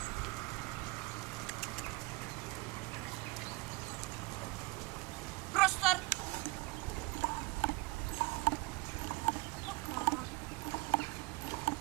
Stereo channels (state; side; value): quieter; left; 24.0 dB